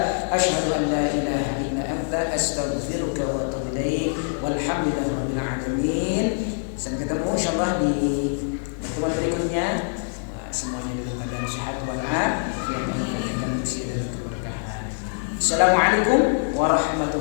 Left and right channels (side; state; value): right; silent; 58 dB below the other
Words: asyhadu an la ilaha illa anta astaghfiruka wa atubu ilaik. Walhamdulillahi rabbil alamin. Sampai ketemu insyaallah di pertemuan berikutnya. Semuanya dalam keadaan sehat walafiat, Allah berikan usia dan keberkahan. Assalamualaikum